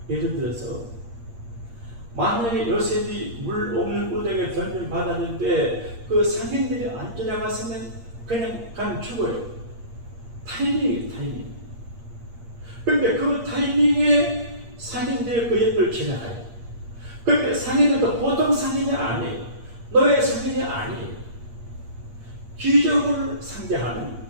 예를 들어서 만약에 요셉이 물 없는 우등에 던짐받았는데 그 상인들이 안 쫓아갔으면 그냥 가면 죽어요. 타이밍이에요, 타이밍. 근데 그 타이밍에 상인들이 그 옆을 지나가요. 근데 상인들도 보통 상인이 아니에요. 노예 상인이 아니에요. 귀족을 상대하는,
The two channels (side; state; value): left; late; 8.5 ms